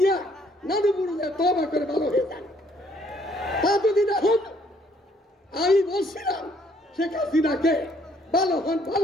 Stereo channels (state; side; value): normal; both; correlation 0.65